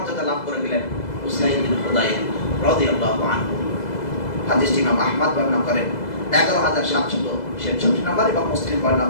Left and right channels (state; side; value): late; right; 2.0 ms